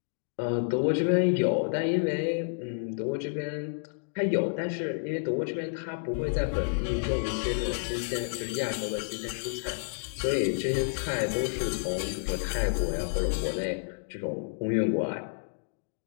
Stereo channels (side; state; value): right; silent; digital silence